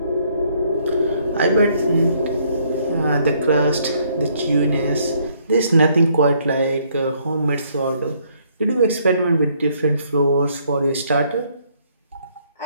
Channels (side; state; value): both; inverted; correlation -0.67